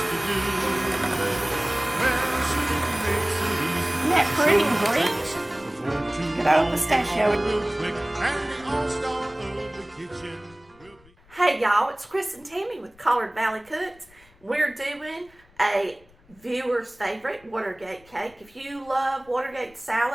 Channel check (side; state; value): left; noise; rumble, 28 dB below the sound